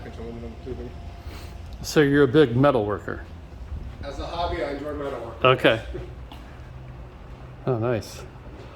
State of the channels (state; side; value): identical; both; correlation 1.00